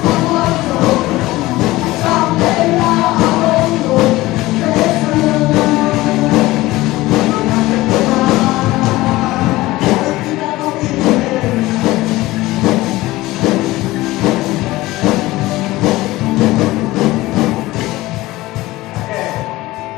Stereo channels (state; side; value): quieter; right; 18.6 dB